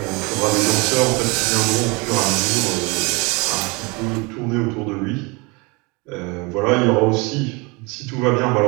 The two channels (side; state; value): left; quieter; 27.9 dB